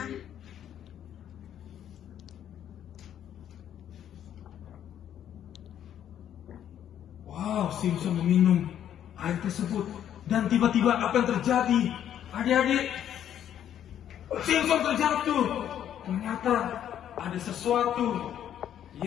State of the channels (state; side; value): quieter; right; 10.2 dB